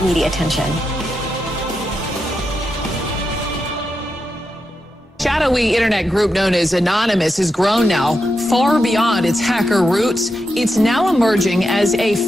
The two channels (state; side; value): normal; both; correlation 0.87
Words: media attention. Shadowy internet group known as Anonymous has grown now far beyond its hacker roots. It's now emerging as a